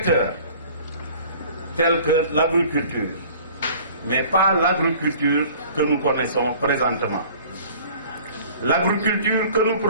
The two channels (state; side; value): inverted; both; correlation -0.49